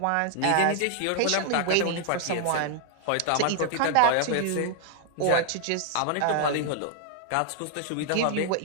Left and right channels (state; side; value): different; both; correlation 0.00